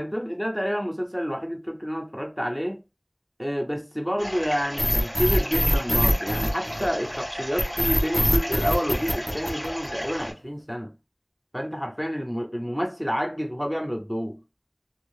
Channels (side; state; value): both; identical; correlation 1.00